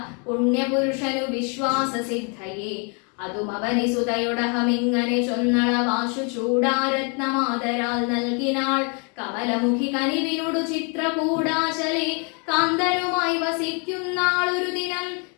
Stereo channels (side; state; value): right; quieter; 35.7 dB